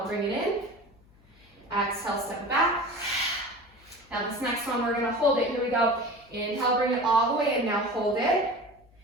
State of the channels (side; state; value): left; noise; hum, 29 dB below the sound